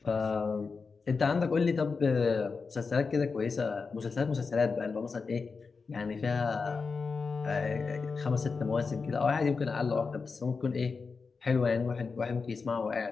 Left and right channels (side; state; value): right; quieter; 4.8 dB